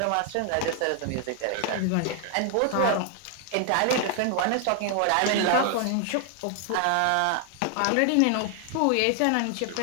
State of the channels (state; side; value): different; both; correlation 0.00